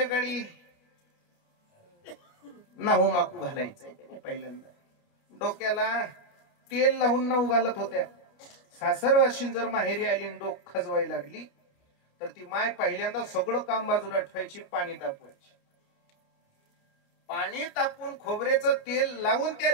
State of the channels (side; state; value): right; late; 29 ms